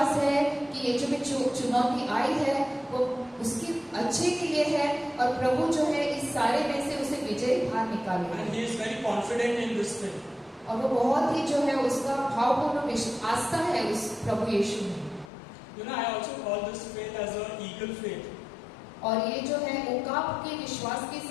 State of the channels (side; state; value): right; drops out; at 15.3 s